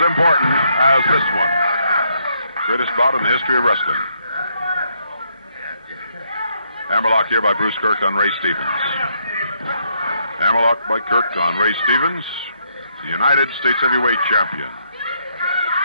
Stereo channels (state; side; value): inverted; both; correlation -0.74